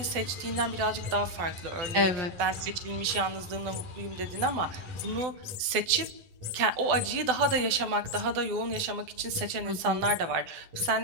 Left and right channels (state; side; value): late; left; 12 ms